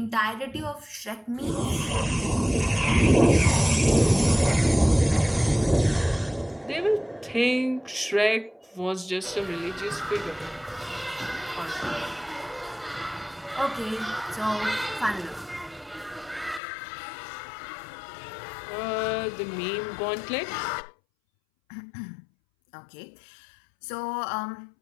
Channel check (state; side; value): drops out; right; at 16.6 s